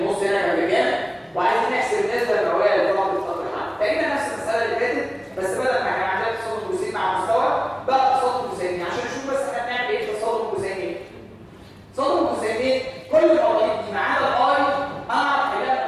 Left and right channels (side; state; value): both; identical; correlation 1.00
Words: النص هنا كان بكام، وعايزين نحسب النسبه المئويه للطاقه بتاعت الحمل. تقريبا نفس المساله اللي فاتت، بس بدل ما كان عندنا تصادم جزيئي مع مستوى بقى تصادم جزيئي. عشان نشوف بس احنا بنعمل ايه تصادم جزيئي. تصادم جزيئي كل المواضيع دي ما عدا الاي اعرف